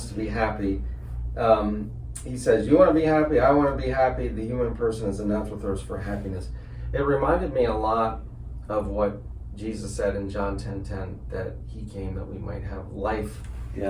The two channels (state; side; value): identical; both; correlation 1.00